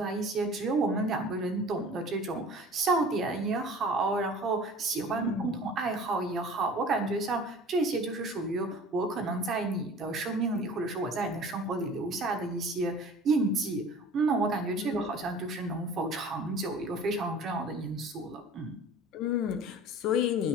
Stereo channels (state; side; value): normal; both; correlation 0.44